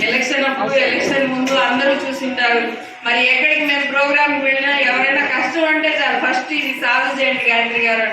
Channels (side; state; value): both; identical; correlation 1.00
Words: ఎలక్షన్ అప్పుడు ఎలక్షన్ ముందు అందరూ చూసింటారు. మరి ఎక్కడికి మేము ప్రోగ్రాంకి వెళ్ళినా ఎవరైనా కష్టం అంటే చాలు ఫస్ట్ ఇది సాధు చేయండి గాయత్రి గారు